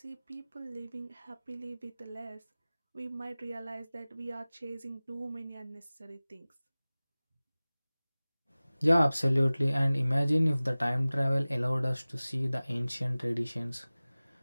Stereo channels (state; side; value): inverted; both; correlation -0.98